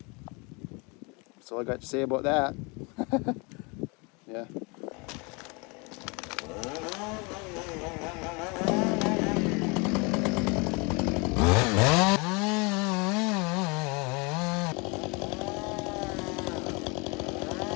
That's all I got to say about that. Yeah.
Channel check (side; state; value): right; quieter; 29.7 dB